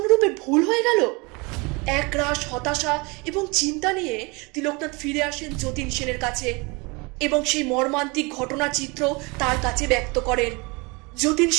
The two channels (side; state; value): left; quieter; 27.6 dB